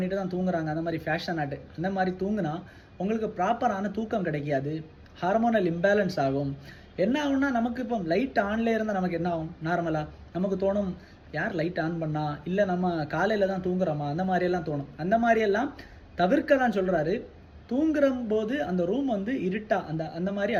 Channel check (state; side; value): identical; both; correlation 1.00